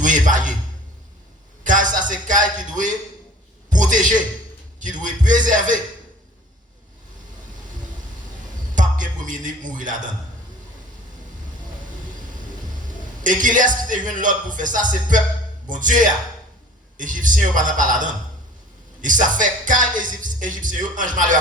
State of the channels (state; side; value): normal; both; correlation 0.47